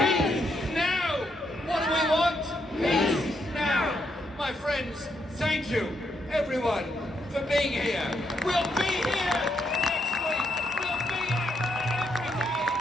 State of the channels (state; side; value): normal; both; correlation 0.78